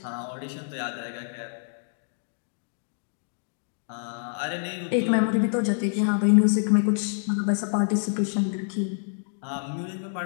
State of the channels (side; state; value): right; silent; digital silence